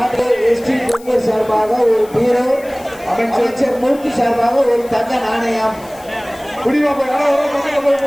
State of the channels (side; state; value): left; noise; hiss, 23 dB below the sound